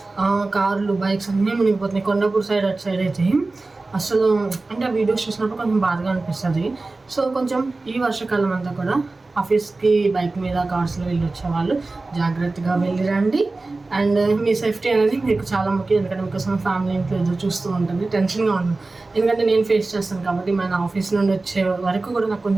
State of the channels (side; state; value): left; quieter; 3.4 dB